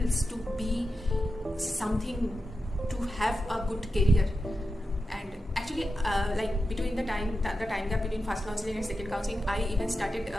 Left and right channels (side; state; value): both; normal; correlation 0.90